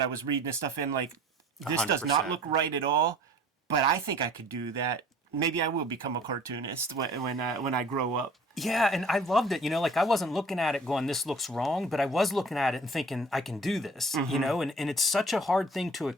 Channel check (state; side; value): normal; both; correlation 0.48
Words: I was reading this stuff in. Like, this 100%. does not look right at all, but I think I could do that. Maybe I will become a cartoonist when I grow up. Yeah, and I loved it. Like, I wasn't looking at it going, this looks wrong, but I was looking at it and thinking, I can do this, and it's such a hard thing to